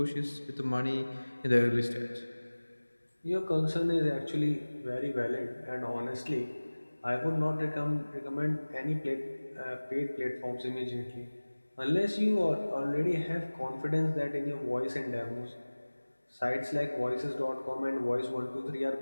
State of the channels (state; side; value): inverted; both; correlation -1.00